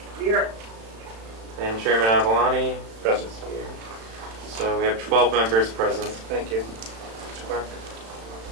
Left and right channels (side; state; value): left; late; 35 ms